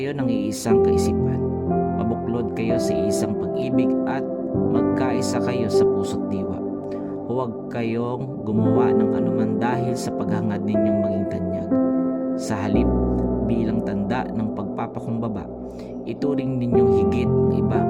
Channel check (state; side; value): identical; both; correlation 1.00